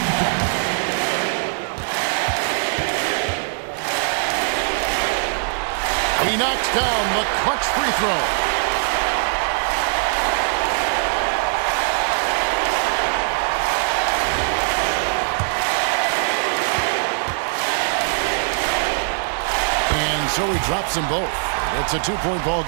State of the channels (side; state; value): left; silent; digital silence